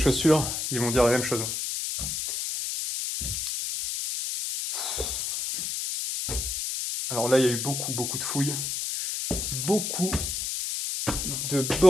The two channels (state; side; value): noise; left; hiss, 3 dB below the sound